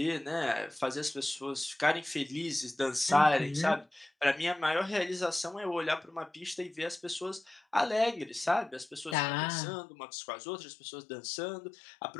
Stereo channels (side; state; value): right; drops out; at 9.2 s